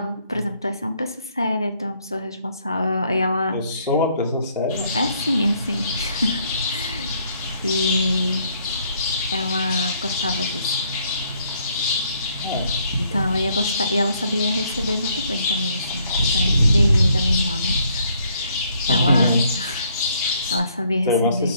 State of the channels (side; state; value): both; inverted; correlation -0.67